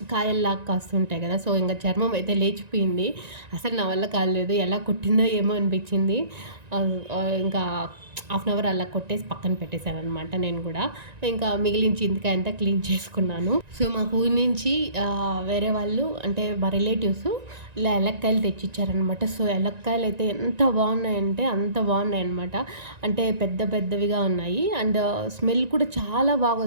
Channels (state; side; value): late; left; 1.9 ms